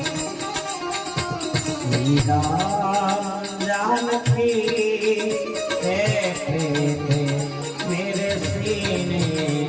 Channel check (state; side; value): identical; both; correlation 1.00